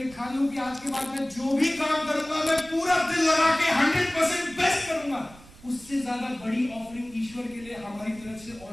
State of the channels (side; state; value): right; noise; rumble, 21 dB below the sound